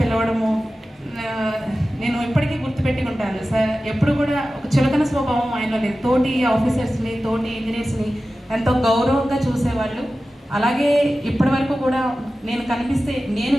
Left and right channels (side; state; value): both; normal; correlation 0.95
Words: పిలవడము నేను ఇప్పటికీ గుర్తుపెట్టుకుంటాను. సార్ ఎప్పుడు కూడా ఒక చులకన స్వభావం ఆయనలో లేదు. తోటి ఆఫీసర్స్ని, తోటి ఇంజనీర్స్ని ఎంతో గౌరవంగా చూసేవాళ్ళు. అలాగే ఇప్పటి వరకు కూడా నేను కనిపిస్తే నేను